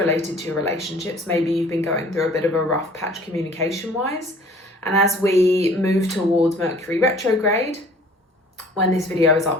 to your relationships. Maybe you've been going through a bit of a rough patch communication-wise. And as we move towards Mercury retrograde, when this video is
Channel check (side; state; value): both; normal; correlation 0.51